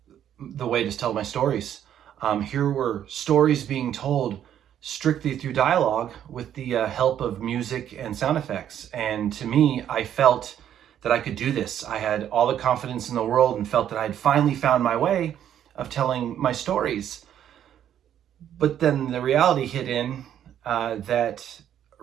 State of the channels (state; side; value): quieter; left; 10.2 dB